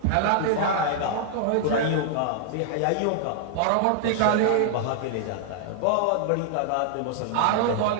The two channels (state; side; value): different; both; correlation -0.01